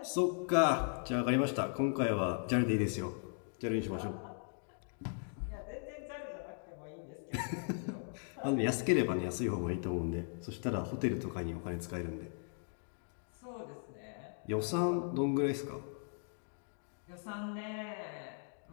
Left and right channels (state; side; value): silent; right; 53 dB below the other